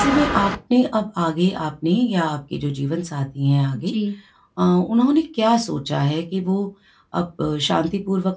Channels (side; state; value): both; identical; correlation 1.00